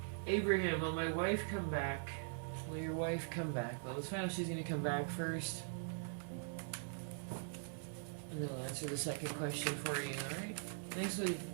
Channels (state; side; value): silent; left; digital silence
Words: Abraham, will my wife come back? Will your wife come back? Well, let's find out if she's going to come back first. And then I'll answer the second question for you, alright? Thank